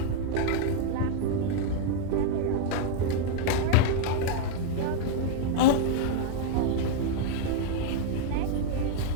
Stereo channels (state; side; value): different; both; correlation -0.01